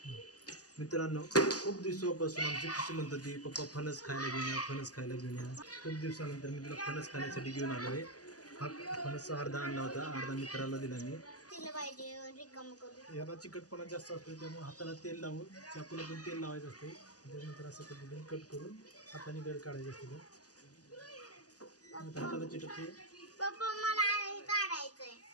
मित्रांनो, खूप दिवसापासून आमची खुशी म्हणत होती पप्पा फणस खायला घेऊन या, फणस खायला घेऊन या. खूप दिवसानंतर मी तुला फणस खाण्यासाठी घेऊन आलो आहे. हा फणस अर्धा आणला होता, अर्धा मित्राला दिला मी. तिला पाहिजे रिकाम करू. याला चिकटपणा जास्त असतो, त्यामुळे हाताला तेल लावून चाकूला पण तेल लावायचं असते. त्याच्यानंतर असं पद्धतीने कट करून हाताने गड काढायचे असते. हाताला चिटकते. पप्पा मला हे काढायचंय.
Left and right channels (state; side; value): late; right; 0.67 ms